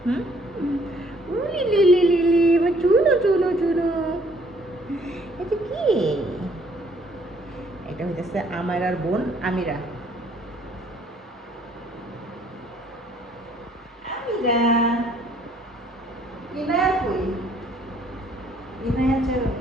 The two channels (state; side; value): normal; both; correlation 0.62